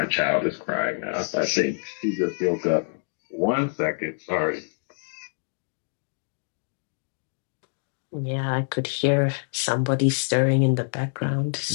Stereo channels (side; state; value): right; silent; digital silence